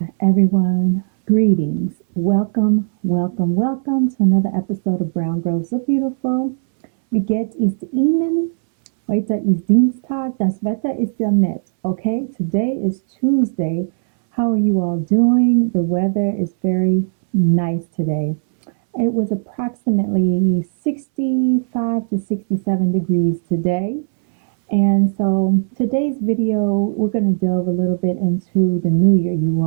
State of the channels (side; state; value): left; silent; 66 dB below the other